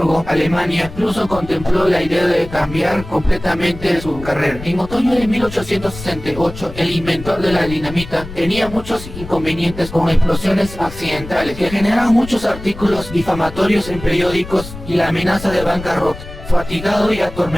Alemania, incluso contempló la idea de cambiar completamente su carrera. En otoño de 1868, el inventor de la dinamita tenía muchos inconvenientes con explosiones accidentales que generaban muchos artículos difamatorios en periódicos y la amenaza de bancarrota. Fatigado y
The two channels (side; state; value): left; noise; rumble, 13 dB below the sound